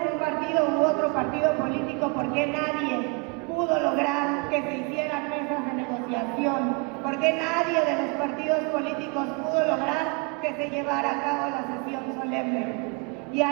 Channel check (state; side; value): quieter; left; 32.6 dB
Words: un partido u otro partido político, ¿por qué nadie pudo lograr que se hicieran mesas de negociación? ¿Por qué nadie de los partidos políticos pudo lograr que se llevara a cabo la sesión solemne? Y